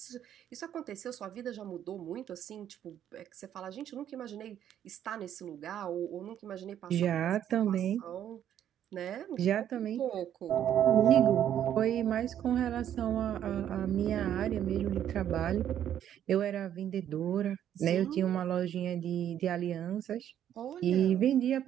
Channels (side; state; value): left; quieter; 10.4 dB